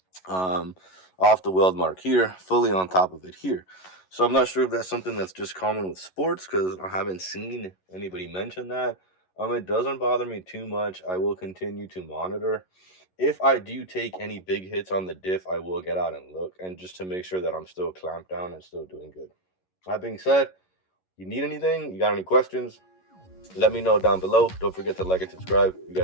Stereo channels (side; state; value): right; late; 11 ms